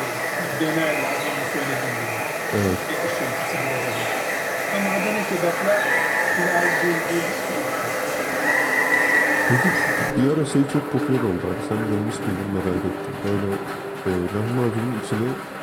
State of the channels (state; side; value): identical; both; correlation 1.00